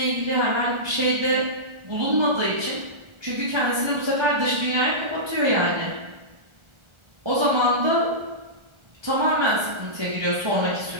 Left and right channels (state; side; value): late; left; 1.3 ms